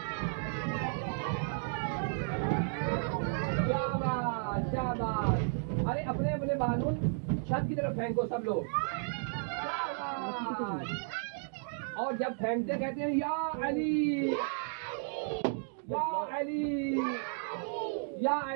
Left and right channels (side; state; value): left; silent; digital silence